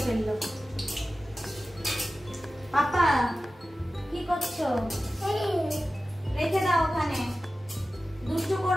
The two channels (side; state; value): both; normal; correlation 0.95